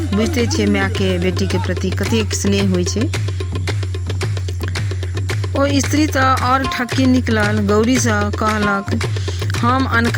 बुझते छियै माय के बेटी के प्रति कतेक स्नेह होइ छै। ओ स्त्री तऽ और ठक्की निकलल। गौरी से कहलक हम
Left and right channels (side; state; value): both; identical; correlation 1.00